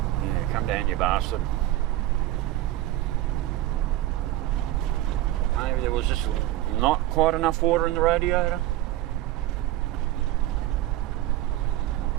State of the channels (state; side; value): quieter; left; 15.3 dB